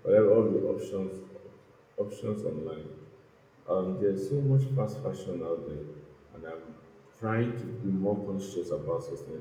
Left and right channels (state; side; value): identical; both; correlation 1.00